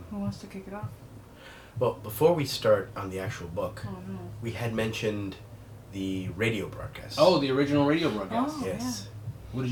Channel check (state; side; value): identical; both; correlation 1.00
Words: Who wants to kick it off? Well, before we start on the actual book, Oh, no. we had mentioned the radio broadcast. Oh, the original radio broadcast. Oh. Yes. What did